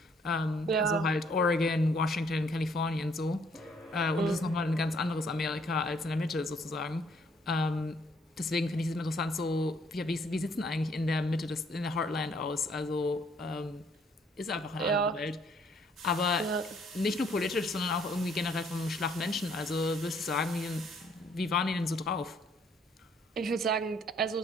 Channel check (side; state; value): both; normal; correlation 0.65